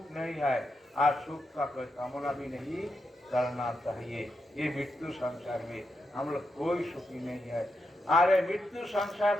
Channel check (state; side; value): normal; both; correlation 0.84